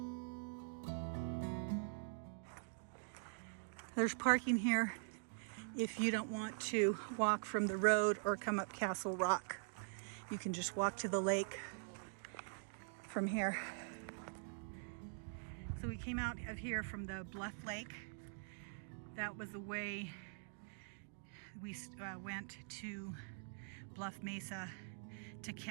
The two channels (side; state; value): left; silent; digital silence